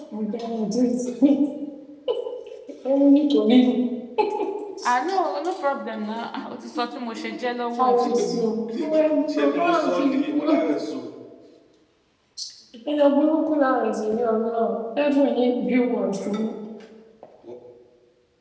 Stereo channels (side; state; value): both; identical; correlation 1.00